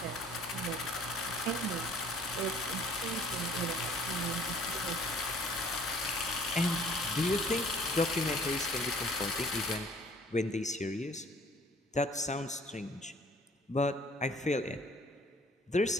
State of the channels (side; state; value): both; normal; correlation 0.55